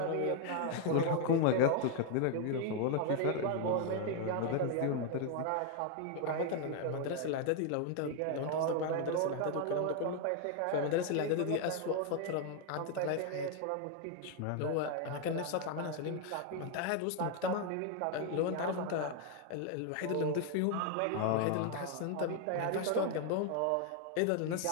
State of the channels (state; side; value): different; both; correlation 0.00